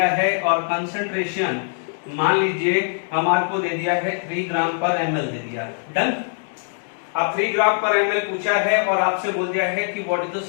है और कंसंट्रेशन मान लीजिए हमारे को दे दिया है 3 ग्राम पर एमएल दे दिया. डन. अब 3 ग्राम पर एमएल पूछा है और आपसे बोल दिया है कि what is the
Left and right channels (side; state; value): right; silent; 64 dB below the other